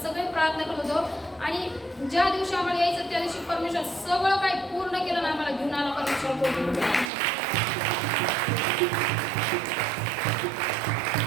सगळे प्रार्थना करत होतो. आणि ज्या दिवशी आम्हाला यायचं त्या दिवशी परमेश्वर सगळं काही पूर्ण केलं ना, आम्हाला घेऊन आला परमेश्वर पूर्ण.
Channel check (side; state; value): left; drops out; at 7.1 s